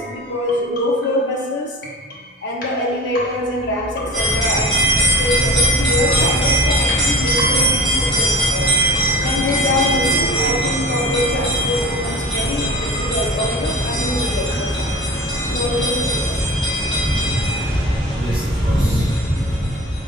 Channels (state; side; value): normal; both; correlation 0.39